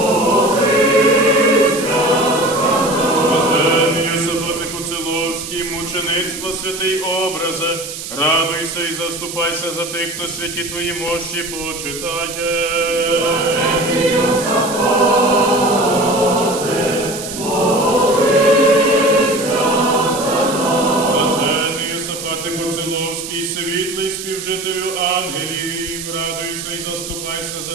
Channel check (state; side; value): noise; right; hiss, 9 dB below the sound